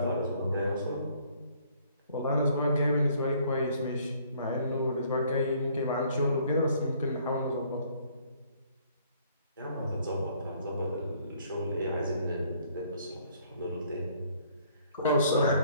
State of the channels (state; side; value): inverted; both; correlation -0.62